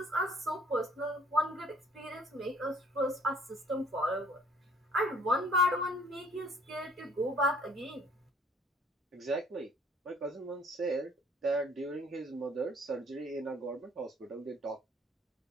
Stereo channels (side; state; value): both; normal; correlation 0.57